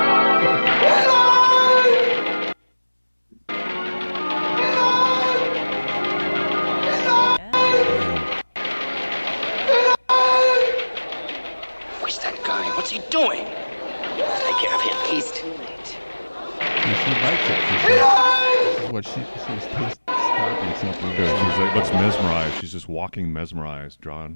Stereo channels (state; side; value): inverted; both; correlation -1.00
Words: Where's that guy? What's he doing? Take care of him. He's too late. She likes it. what she's stopping something. Good. She's like, looks mesmerized. She's just walking mesmerized,